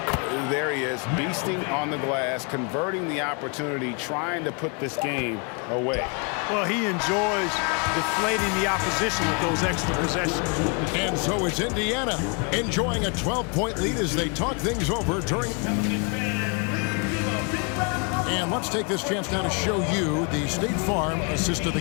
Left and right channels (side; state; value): right; quieter; 34.6 dB